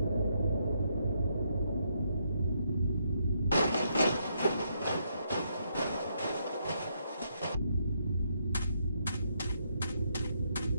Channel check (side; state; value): both; inverted; correlation -0.76